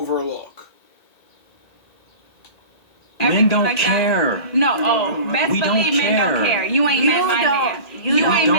Men don't care. No, best We don't believe men don't care. care. You ain't met my man. You ain't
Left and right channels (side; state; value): right; late; 1.8 ms